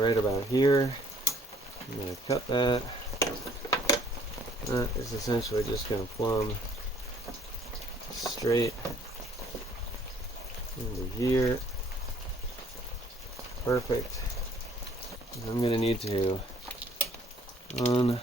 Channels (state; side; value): normal; both; correlation 0.61